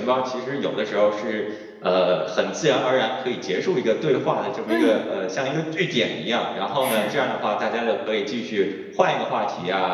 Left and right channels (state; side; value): identical; both; correlation 1.00